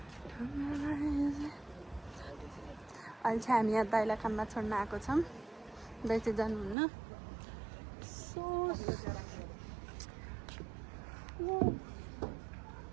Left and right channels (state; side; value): drops out; left; at 6.8 s